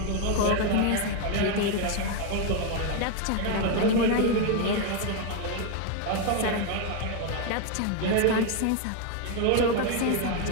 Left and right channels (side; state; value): both; different; correlation 0.01